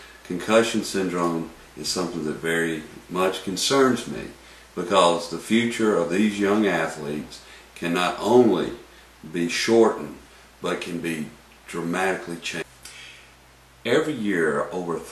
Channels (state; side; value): identical; both; correlation 1.00